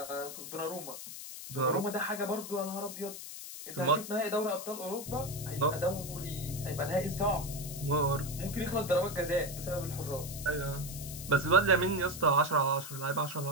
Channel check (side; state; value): left; noise; hiss, 10 dB below the sound